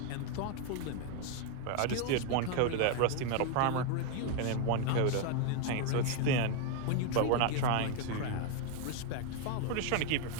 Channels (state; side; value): different; both; correlation 0.01